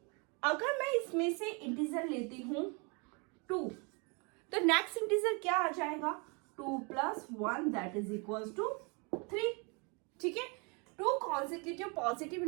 अगर मैं इसमें से इंटीजर लेती हूँ 2, तो नेक्स्ट इंटीजर क्या आ जाएगा 2 plus 1 that is equals to 3। ठीक है, 2 consecutive पॉजिटिव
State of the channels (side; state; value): left; quieter; 32.5 dB